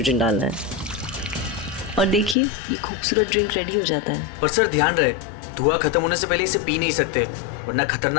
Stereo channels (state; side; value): drops out; right; at 2.4 s